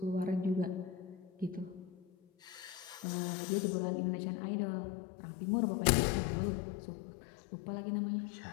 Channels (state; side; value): drops out; right; at 3.1 s